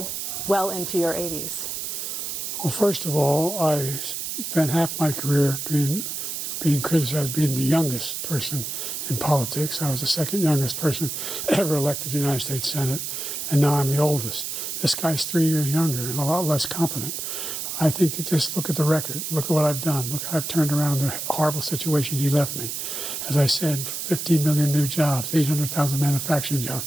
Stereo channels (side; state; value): right; noise; hiss, 4 dB below the sound